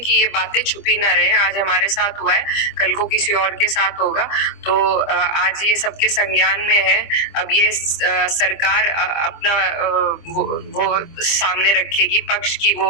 ये बातें छुपी ना रहें। आज हमारे साथ हुआ है, कल को किसी और के साथ होगा, तो आज ये सबके संज्ञान में है। अब ये सरकार अपना वो सामने रखेगी पक्ष की, वो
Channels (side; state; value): right; late; 25 ms